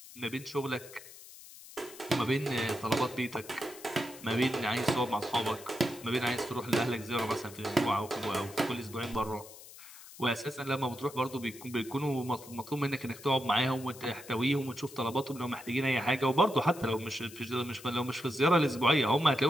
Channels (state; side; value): noise; left; hiss, 17 dB below the sound